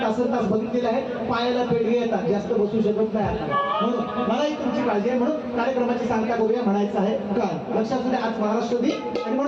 तासन तास बघितलेले आहेत. पायाला पेडगे येतात, जास्त बसू शकत नाही आता. म्हणून मलाही तुमची काळजी आहे. म्हणून कार्यक्रमाची सांगता करूया म्हणायचं आहे. काय लक्षात असू द्या आज महाराष्ट्र दिन आणि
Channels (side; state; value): both; identical; correlation 1.00